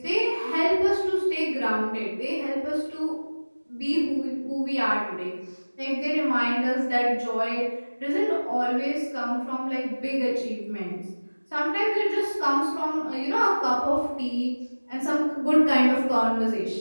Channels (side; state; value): both; inverted; correlation -1.00